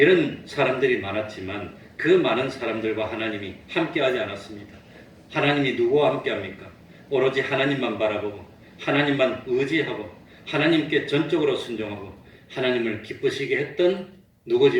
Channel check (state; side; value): identical; both; correlation 1.00